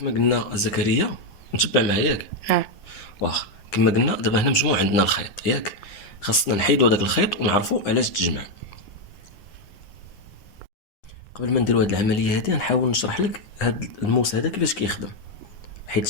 قلنا زكريا، نتبع معايا ياك؟ واخا. كما قلنا دابا هنا مجموع عندنا الخيط ياك، خاصنا نحيدوا هذاك الخيط ونعرفوا علاش تجمع. قبل ما نديروا هذه العمليه هذه نحاول نشرح لك هذا الموس هذا كيفاش كيخدم،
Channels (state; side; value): late; right; 9.7 ms